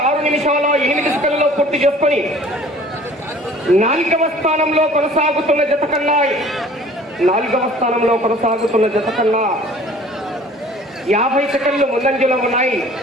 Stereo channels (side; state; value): both; normal; correlation 0.50